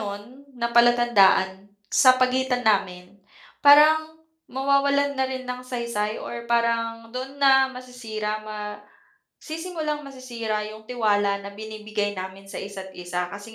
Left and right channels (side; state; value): both; identical; correlation 1.00